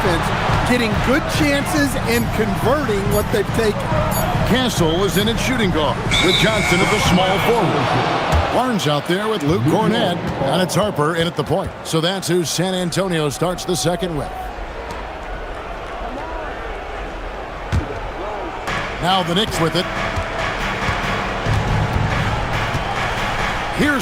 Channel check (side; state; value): both; identical; correlation 1.00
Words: getting good chances and converting what they've taken. Castle is in at shooting guard with Johnson at the small forward. Barnes out there with Luke Cornett, and it's Harper in at the point. So that's who San Antonio starts the second with. Now the Knicks with it.